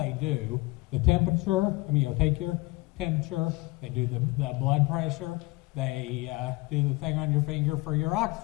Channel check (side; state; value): right; quieter; 22.3 dB